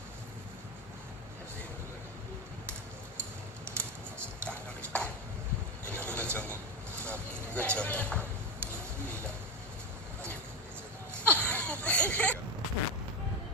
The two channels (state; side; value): normal; both; correlation 0.16